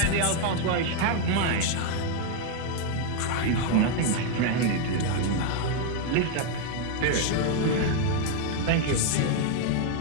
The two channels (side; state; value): both; different; correlation 0.00